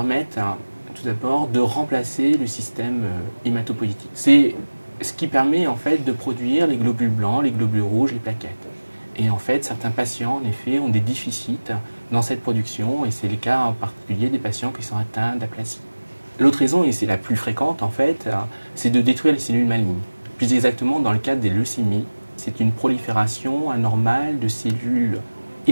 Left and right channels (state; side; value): inverted; both; correlation -1.00